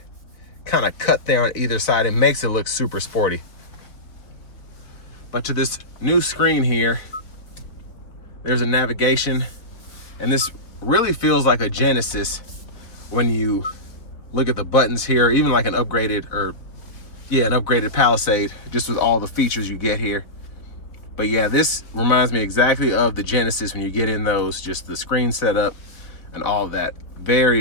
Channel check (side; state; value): right; late; 4.1 ms